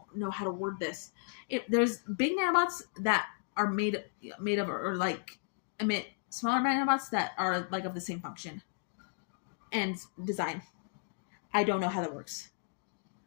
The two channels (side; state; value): right; silent; digital silence